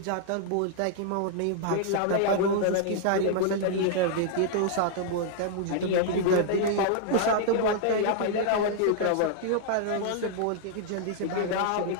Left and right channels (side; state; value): both; different; correlation -0.01